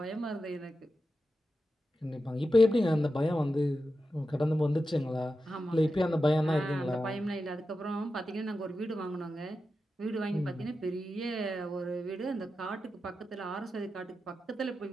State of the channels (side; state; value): both; normal; correlation 0.91